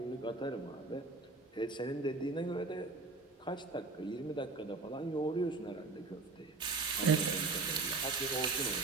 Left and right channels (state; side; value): quieter; left; 3.7 dB